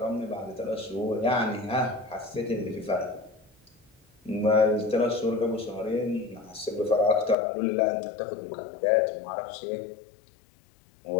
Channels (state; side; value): drops out; right; at 7.4 s